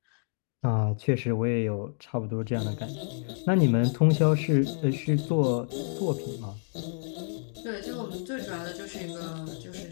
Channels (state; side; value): silent; right; 59 dB below the other